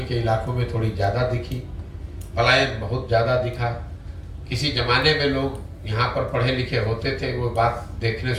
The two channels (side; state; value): both; identical; correlation 1.00